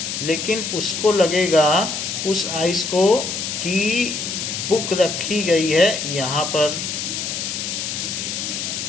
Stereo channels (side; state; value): left; noise; hiss, 4 dB below the sound